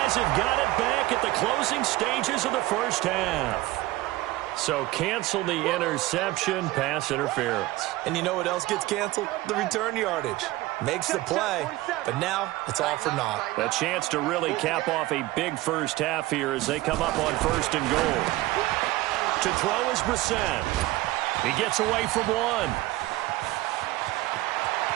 have got it back at the closing stages of the first half. So cancel the interception, pass interference. And you know what else gets canceled? The return yardage. Makes the play, but now it's all for naught. A chance to really cap off a big first half here as they come up on 1st and goal. To throw is Brissett. He gets away from one.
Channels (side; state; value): left; quieter; 18.3 dB